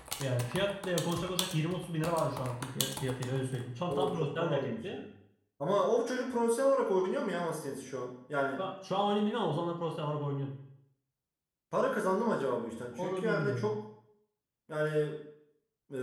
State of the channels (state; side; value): identical; both; correlation 1.00